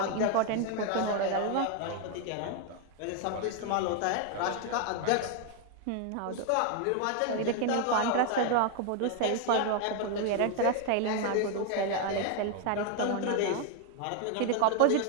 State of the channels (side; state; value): both; different; correlation 0.01